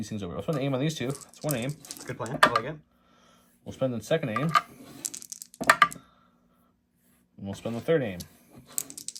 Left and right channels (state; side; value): identical; both; correlation 1.00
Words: things over. We'll spend an aim on these 2. That's 1 aim. It's a good plan. I like it. We'll spend the second aim. And we'll spend the third aim.